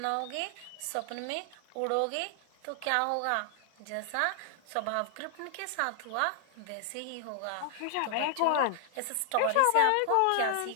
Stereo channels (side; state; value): both; different; correlation 0.00